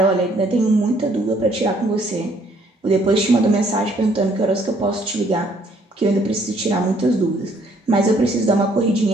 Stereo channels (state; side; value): normal; both; correlation 0.64